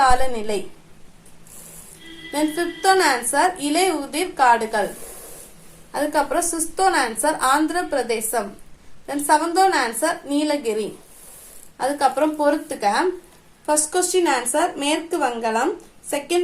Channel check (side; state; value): both; identical; correlation 1.00